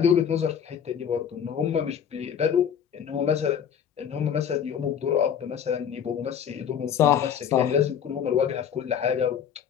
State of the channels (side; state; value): right; quieter; 8.3 dB